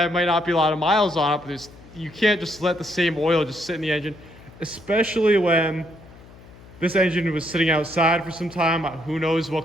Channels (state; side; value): noise; left; hum, 21 dB below the sound